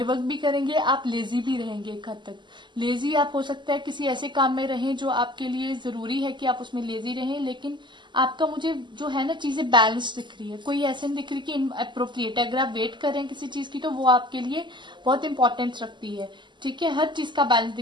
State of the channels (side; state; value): left; late; 0.22 ms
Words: वर्क भी करेंगे, आप लेजी भी रहेंगे। एक हद तक लेजी आप हो सकता है किसी ऐसे काम में रहें जो आपके लिए जरूरी है कि आप उसमें लेजी रहें, लेकिन आपका मुझे जो है ना चीजें बैलेंस दिख रही है, कोई ऐसे नहीं दिख रही कि अप्रोप्रिएट है। अगर आप वेट कर रहे हैं किसी चीज की तो वो आपके लिए बहुत इंपॉर्टेंस रखती है। ठीक है, हर चीज का बैलेंस